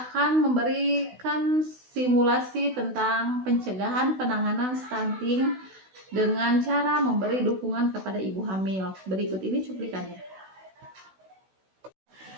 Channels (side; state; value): left; late; 16 ms